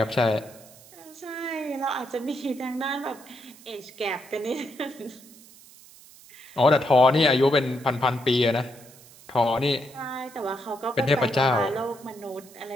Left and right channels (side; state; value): right; noise; hiss, 22 dB below the sound